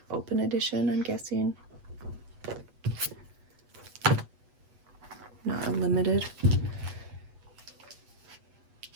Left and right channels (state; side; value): late; left; 8.1 ms